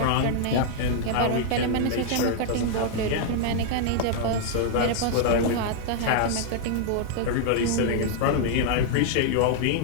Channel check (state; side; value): different; both; correlation 0.00